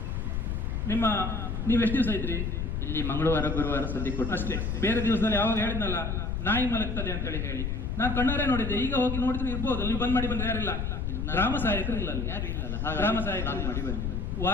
ನೀವು ಎಷ್ಟು ದಿವಸ ಇದ್ರಿ ಇಲ್ಲಿ? ಮಂಗಳವಾರ ಗುರುವಾರ ಸದ್ಯ ಕೊಟ್ಟು ಅಷ್ಟೇ. ಬೇರೆ ದಿವಸದಲ್ಲಿ ಯಾವಾಗ ಹೇಳಿದ್ನಲ್ಲ ನಾಯಿ ಮಲಗ್ತದೆ ಅಂತ ಹೇಳಿ ನಾನು ಕಣ್ಣಾರೆ ನೋಡಿದ್ದೆ. ಈಗ ಹೋಗಿ ನೋಡಿದ್ರೆ ಇರ್ಬೋದು, ನೀವು ಬಂದ್ ಮಾಡಿ ಬಂದ್ರೆ ಯಾರಿಲ್ಲ, ಗ್ರಾಮ ಸಹಾಯಕರು ಇಲ್ಲ, ಗ್ರಾಮ ಸಹಾಯಕರು ಮಾಡಿ ಬಂದಿಲ್ಲ.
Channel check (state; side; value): noise; left; rumble, 1 dB below the sound